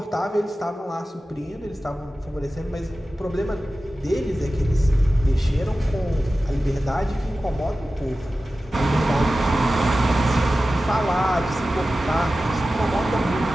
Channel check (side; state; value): both; normal; correlation 0.95